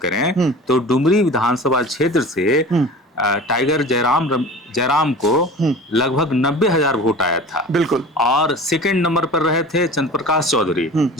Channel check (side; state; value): both; normal; correlation 0.38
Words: तो डुमरी विधानसभा क्षेत्र से टाइगर जयराम को लगभग 90,000 वोट आया था। बिल्कुल। और सेकंड नंबर पर रहे थे चंद्रप्रकाश चौधरी